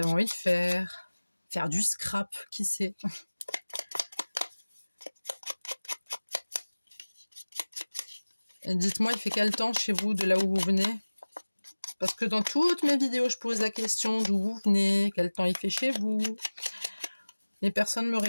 envie de faire du scrap, qui sait. Et dites-moi, il fait quel temps chez vous, de là où vous venez? Parce que dans toutes mes vidéos, je pose la question d'où vous venez, quel temps il fait chez vous. Et personne ne me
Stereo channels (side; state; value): both; inverted; correlation -1.00